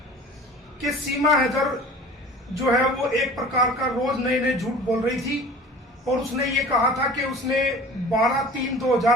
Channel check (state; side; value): normal; both; correlation 0.42